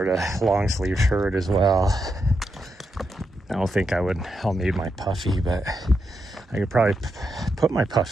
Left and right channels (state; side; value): normal; both; correlation 0.84